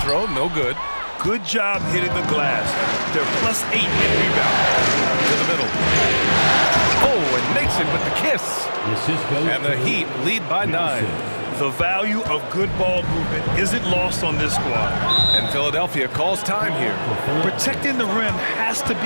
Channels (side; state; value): both; inverted; correlation -1.00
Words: no good. Good job hitting the glass. They're +8 in rebound. To the middle. Oh, and makes it with the kiss. And the Heat lead by 9. The value of good ball movement isn't lost on this squad. And Philadelphia calls time here. Protecting the rim has to